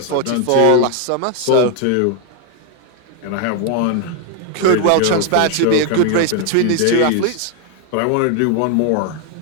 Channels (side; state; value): both; different; correlation 0.01